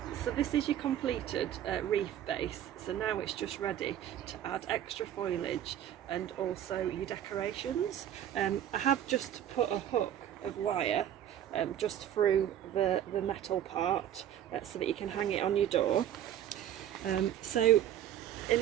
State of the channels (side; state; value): left; quieter; 10.7 dB